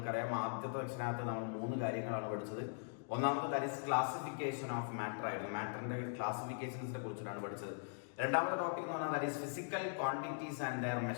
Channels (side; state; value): right; silent; digital silence